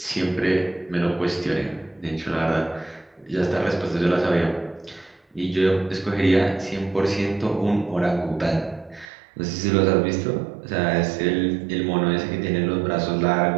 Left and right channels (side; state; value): left; drops out; at 9.1 s